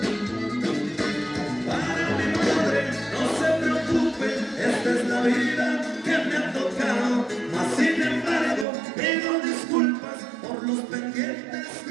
Para mi madre, no se preocupe, esta es la vida que me ha tocado, mas sin embargo pido disculpas por los pendientes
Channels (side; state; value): left; drops out; at 8.7 s